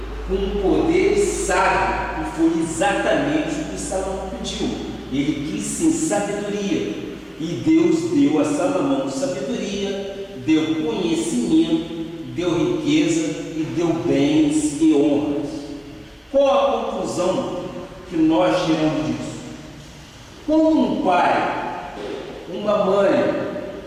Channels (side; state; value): both; identical; correlation 1.00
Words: com poder sábio, e foi exatamente o que Salomão pediu. Ele quis sim sabedoria, e Deus deu a Salomão sabedoria, deu conhecimento, deu riqueza e deu bens e honras. Qual a conclusão que nós tiramos disso? Como um pai, uma mãe,